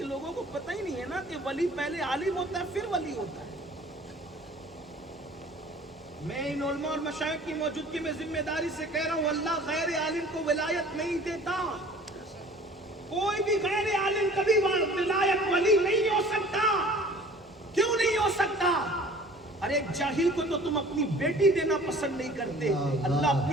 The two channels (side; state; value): both; normal; correlation 0.48